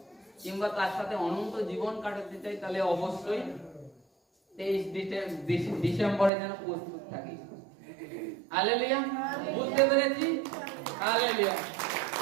কিংবা তার সাথে অনন্ত জীবন কাটাতে চাই, তাহলে অবশ্যই 23 ডিসেম্বরে যেন প্রস্তুত থাকি। হালেলুয়া, বুঝতে পেরেছি? হালেলুয়া।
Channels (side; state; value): left; drops out; at 6.3 s